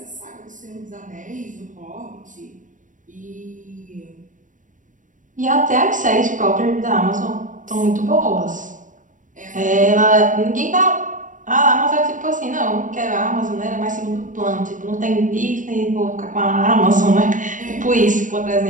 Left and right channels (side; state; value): left; late; 0.37 ms